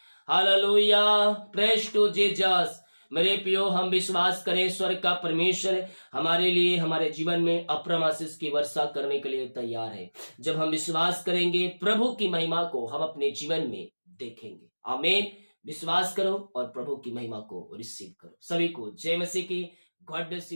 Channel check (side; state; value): both; inverted; correlation -1.00